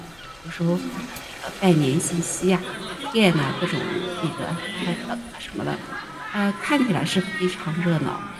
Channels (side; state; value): left; noise; rumble, 28 dB below the sound